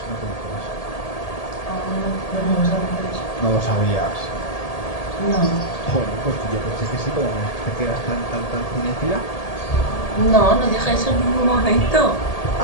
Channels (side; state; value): right; late; 1.8 ms